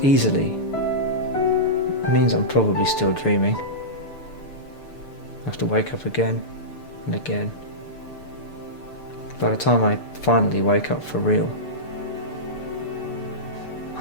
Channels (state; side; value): late; right; 6.9 ms